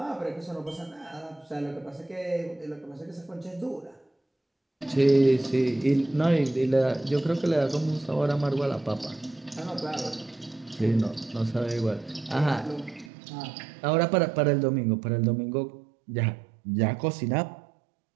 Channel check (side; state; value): left; drops out; at 13.1 s